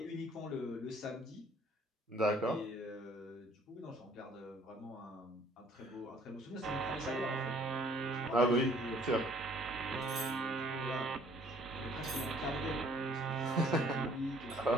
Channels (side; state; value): both; normal; correlation 0.58